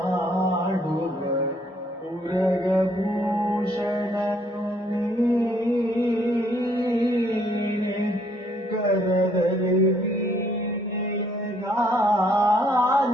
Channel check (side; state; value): both; normal; correlation 0.66